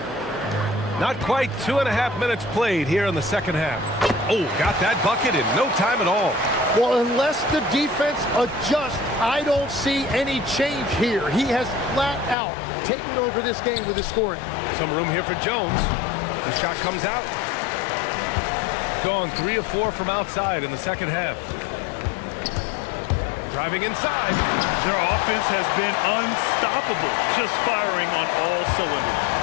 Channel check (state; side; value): drops out; right; at 12.4 s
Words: Not quite 2.5 minutes played here in the second half. Oh, got that bucket in no time at all. Well, unless the defense adjusts, I don't see any change here. He has flat out taken over this game with his scoring. Some room here for Jones. The shot comes out. Gone 3 of 4 from outside in the second half. Driving inside. Their offense has been unstoppable, just firing on all cylinders.